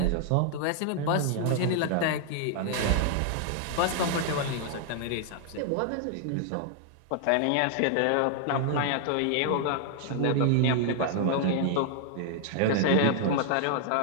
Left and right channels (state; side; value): different; both; correlation 0.00